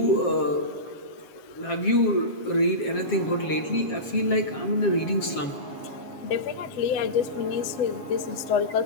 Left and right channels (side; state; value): right; late; 7.3 ms